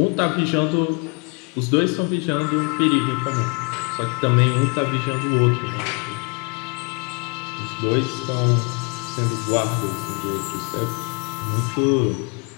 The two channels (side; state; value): right; quieter; 33.1 dB